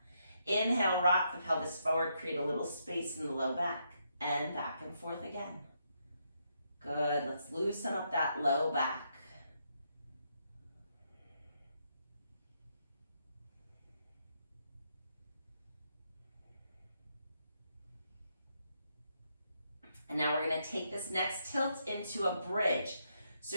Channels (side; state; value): both; inverted; correlation -0.78